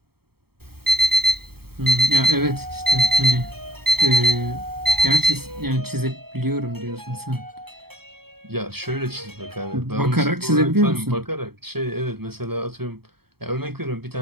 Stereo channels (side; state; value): left; late; 0.95 ms